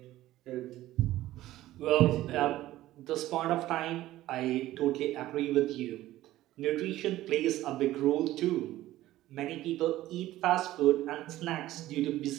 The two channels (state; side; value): quieter; left; 15.3 dB